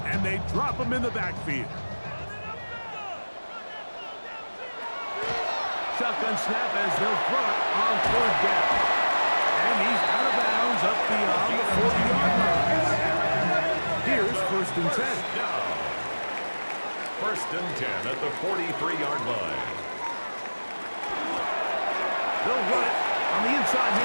and they drop him in the backfield. Shotgun snap as they'll throw it on third down. And he's out of bounds up beyond the 40-yard line. Here's first and 10. First and 10 at the 43-yard line. They'll run it on the inside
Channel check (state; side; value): inverted; both; correlation -1.00